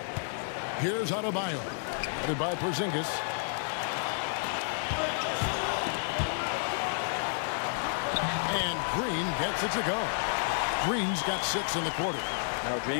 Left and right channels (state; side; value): silent; right; 57 dB below the other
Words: Here's Adebayo. Headed by Porzingis. And Green gets it to go. Green's got 6 in the quarter. Now,